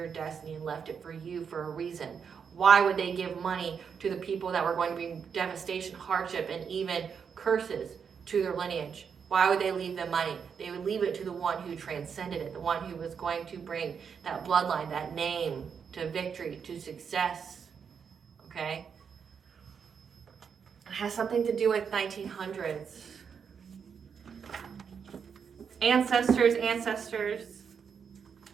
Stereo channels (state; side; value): quieter; left; 6.7 dB